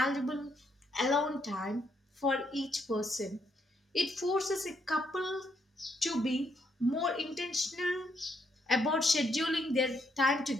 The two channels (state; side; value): normal; both; correlation 0.75